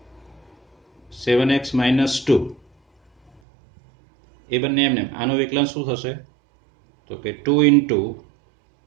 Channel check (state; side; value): drops out; left; at 3.4 s